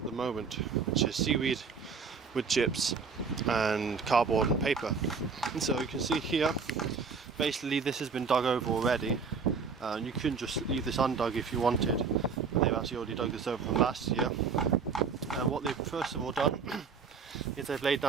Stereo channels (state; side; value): quieter; left; 5.4 dB